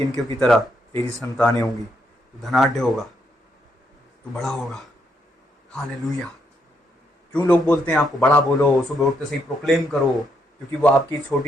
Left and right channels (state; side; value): normal; both; correlation 0.76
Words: की तरह तेरी संतानें होंगी, तू धनाढ्य होगा, तू बड़ा होगा। हालेलुया। क्यों लोग बोलते हैं आपको बड़ा बोलो, सुबह उठते से ही प्रोक्लेम करो? क्योंकि वो आपकी